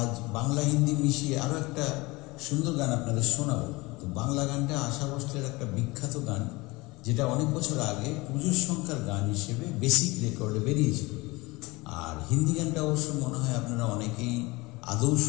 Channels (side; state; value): right; quieter; 23.1 dB